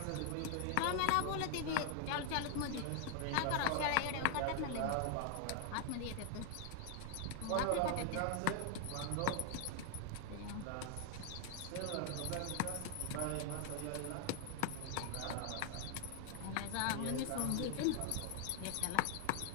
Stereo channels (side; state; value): both; different; correlation 0.00